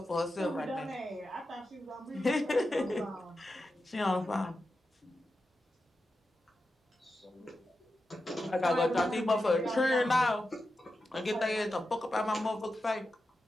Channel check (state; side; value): normal; both; correlation 0.90